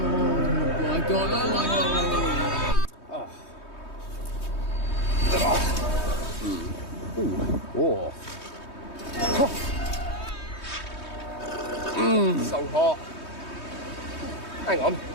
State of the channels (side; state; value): right; late; 3.2 ms